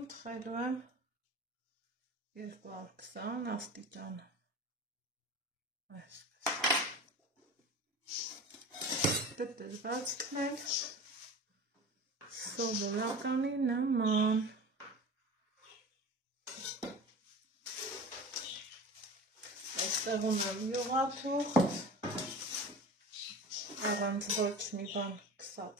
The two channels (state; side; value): normal; both; correlation 0.35